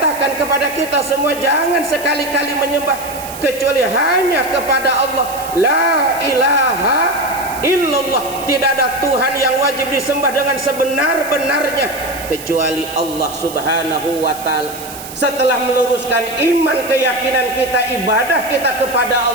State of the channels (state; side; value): noise; right; hiss, 13 dB below the sound